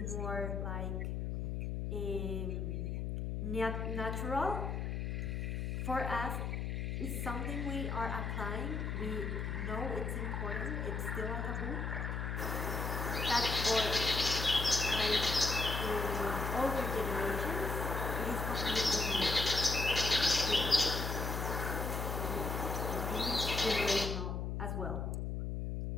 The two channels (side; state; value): left; noise; hum, 2 dB below the sound